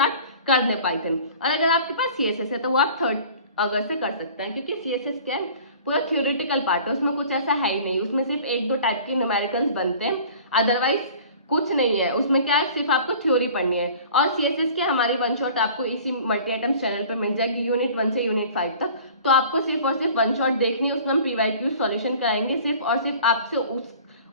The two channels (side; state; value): both; inverted; correlation -0.46